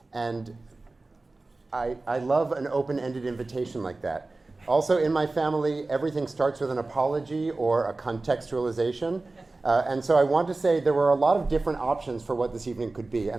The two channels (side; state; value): left; quieter; 3.3 dB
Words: And I love an open-ended invitation like that. Also, in my family, everything starts with an apology or a contextualization. And so I want to say there were a lot of different options for what this evening could be.